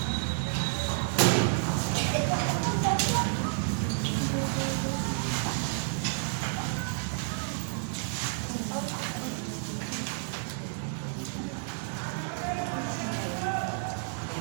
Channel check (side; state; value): left; silent; 58 dB below the other